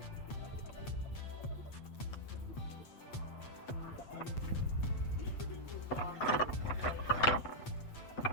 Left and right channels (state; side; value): late; right; 8.2 ms